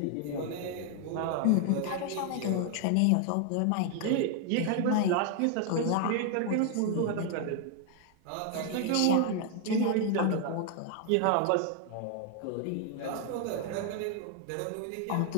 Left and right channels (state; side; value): different; both; correlation 0.00